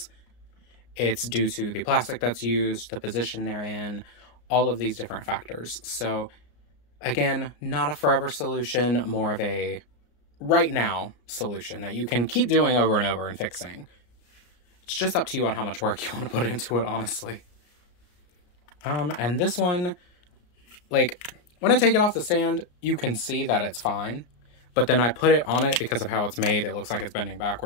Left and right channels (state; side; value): late; right; 34 ms